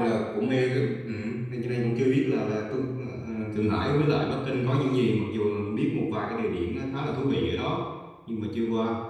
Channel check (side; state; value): both; identical; correlation 1.00